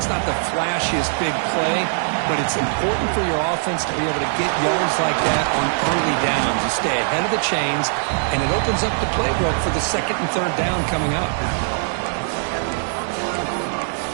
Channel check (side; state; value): left; silent; digital silence